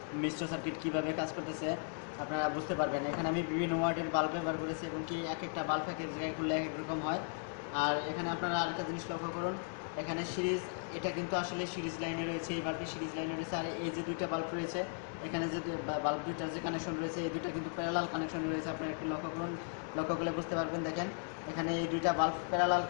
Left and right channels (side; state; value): right; silent; 53 dB below the other